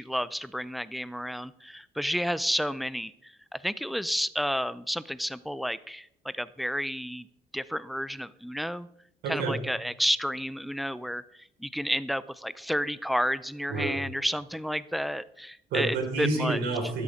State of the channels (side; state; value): both; normal; correlation 0.89